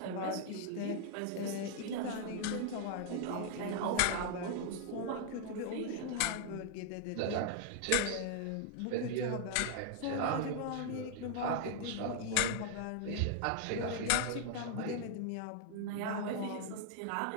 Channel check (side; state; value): both; different; correlation -0.01